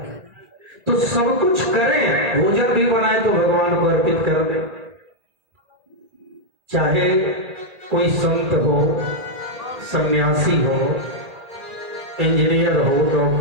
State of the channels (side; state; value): left; late; 1.8 ms